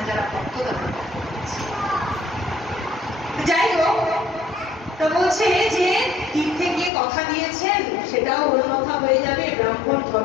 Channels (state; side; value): drops out; right; at 6.9 s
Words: যারা ভক্ত তারা যাই হোক। তো বলছে যে তীর্থে গিয়ে কথা দিয়েছেন সেটাও ওর কথা হয়ে যাবে, ব্রাহ্মণ